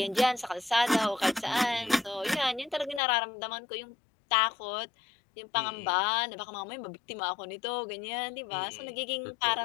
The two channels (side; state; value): right; drops out; at 3.0 s